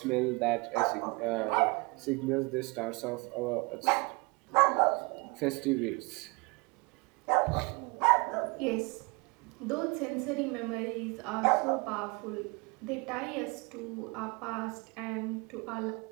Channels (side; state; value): left; quieter; 28.6 dB